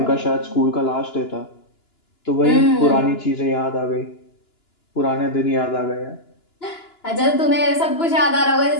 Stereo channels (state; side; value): late; right; 2.9 ms